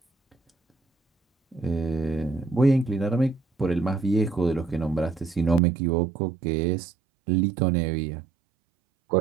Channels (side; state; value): left; drops out; at 5.6 s